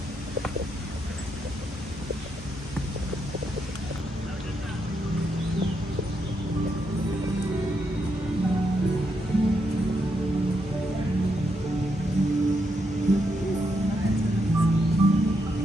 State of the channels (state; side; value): normal; both; correlation 0.80